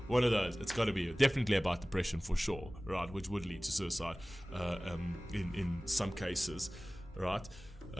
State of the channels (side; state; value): both; normal; correlation 0.98